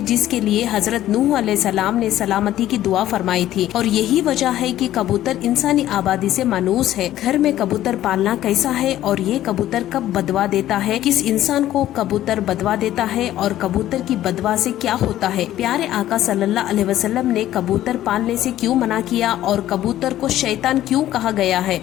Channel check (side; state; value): right; quieter; 13.3 dB